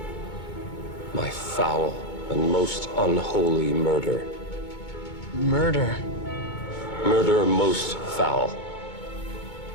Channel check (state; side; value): late; right; 2.2 ms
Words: my foul and most unholy murder. Murder. Murder most foul.